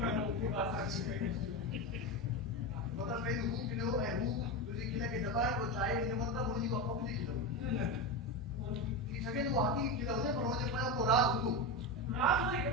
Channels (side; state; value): both; normal; correlation 0.17